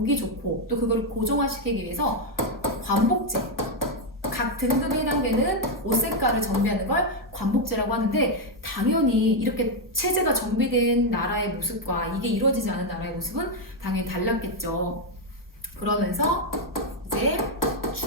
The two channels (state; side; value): normal; both; correlation 0.02